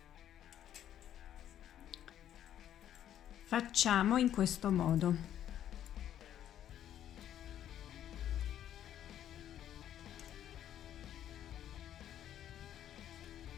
facciamo in questo modo.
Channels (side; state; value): right; quieter; 10.9 dB